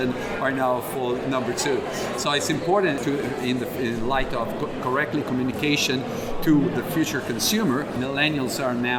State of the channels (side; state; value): both; identical; correlation 1.00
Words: are now for number 2. So it's important to, in light of correctly communication to the future consumer. Millennials are